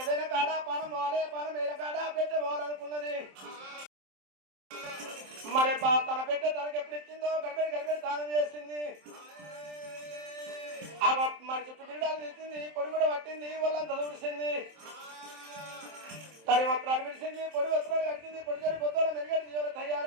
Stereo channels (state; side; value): late; left; 27 ms